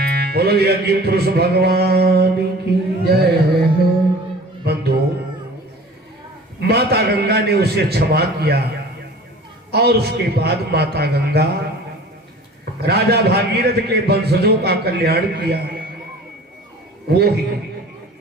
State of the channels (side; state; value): both; normal; correlation 0.44